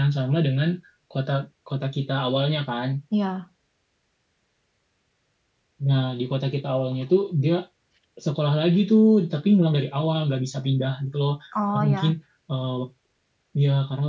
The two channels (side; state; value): both; identical; correlation 1.00